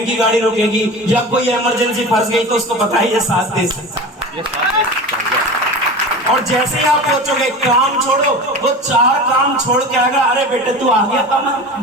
गाड़ी रुकेगी या कोई इमरजेंसी फंस गई तो उसको पता है ये साथ दे सकता है। और जैसे ही आप सोचोगे काम छोड़ो, वो 4 काम छोड़ के आएगा, अरे बेटे तू आ गया कमल,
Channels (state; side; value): normal; both; correlation 0.32